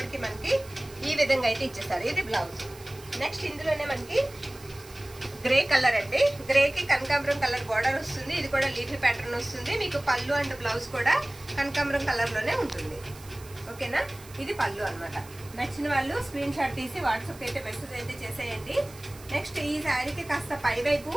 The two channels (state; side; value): noise; right; hiss, 20 dB below the sound